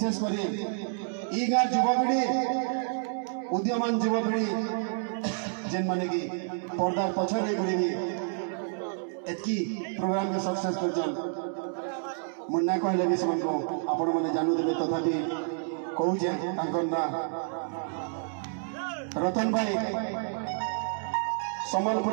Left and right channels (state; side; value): silent; left; digital silence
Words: कर गाँव युवपीढ़ी उद्यमान युवपीढ़ी जेन माने कि पर्दार पछरे बुढ़ी एतकी प्रोग्राम के सक्सेस कर मुन्ना कहले भी से आपण मैंने जानू देवे तथापि कहूचे ना रतन भाई